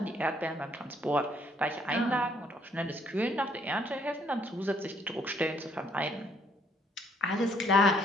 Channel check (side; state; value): both; normal; correlation 0.66